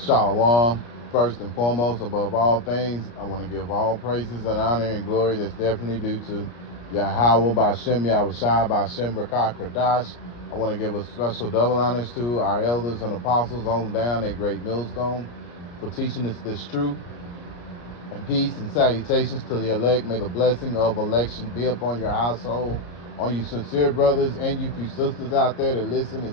First and foremost, above all things, I want to give all praises and honor and glory that's definitely due to Yahweh Ba'Shem Yahushua Ba'Shem Rakah Kradash. I want to give a special double honors to our elders and apostles on down at Great Millstone for teaching us this truth. And peace and salutations to the elect. May the blessing of election be upon your household, on you sincere brothers and you few sisters out there that listen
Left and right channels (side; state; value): right; late; 34 ms